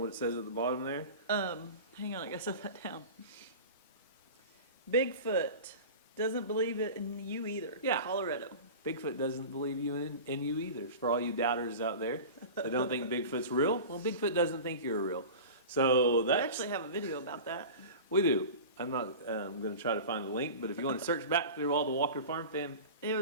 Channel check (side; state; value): both; inverted; correlation -0.33